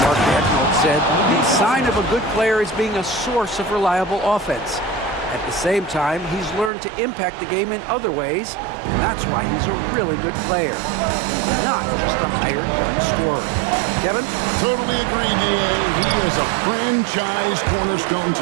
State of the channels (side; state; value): left; drops out; at 6.7 s